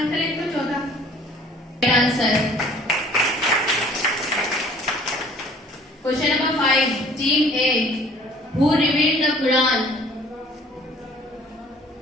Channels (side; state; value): both; normal; correlation 0.53